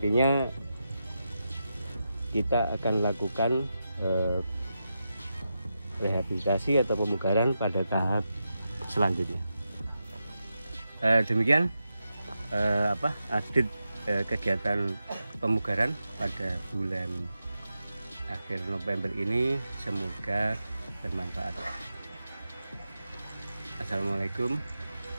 kita akan lakukan rehabilitasi atau pemugaran pada tahap selanjutnya. Demikian update kegiatan pemugaran pada bulan akhir November ini, semoga bermanfaat. Assalamualaikum,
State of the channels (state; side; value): inverted; both; correlation -0.88